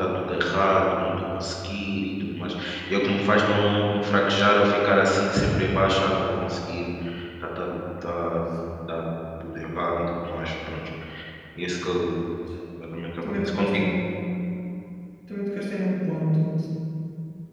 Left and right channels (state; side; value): identical; both; correlation 1.00